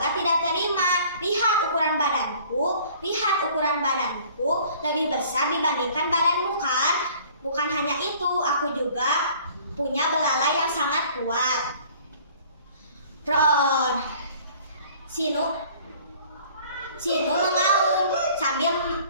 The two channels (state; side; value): inverted; both; correlation -0.52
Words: tidak terima. Lihat ukuran badanku lebih besar dibandingkan badanmu kan? Bukan hanya itu, aku juga punya belalai yang sangat kuat. Roar. Sinu mengaum sambil